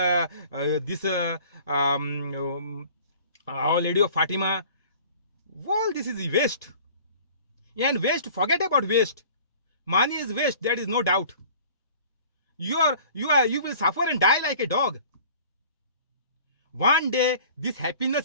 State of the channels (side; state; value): both; inverted; correlation -0.47